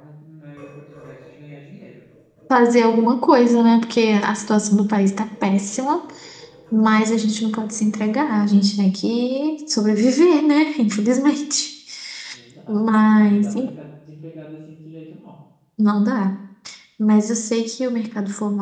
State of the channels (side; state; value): both; identical; correlation 1.00